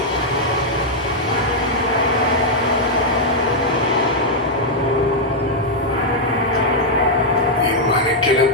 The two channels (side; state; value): both; normal; correlation -0.04